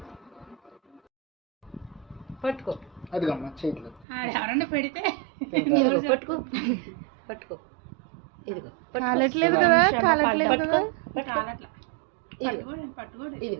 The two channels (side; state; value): left; drops out; at 4.0 s